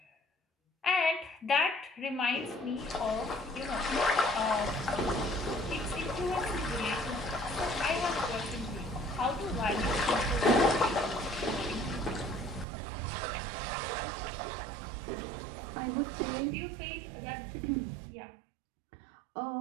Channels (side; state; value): left; drops out; at 12.7 s